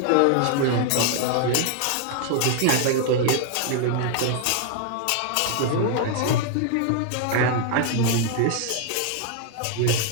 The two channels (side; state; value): both; different; correlation 0.00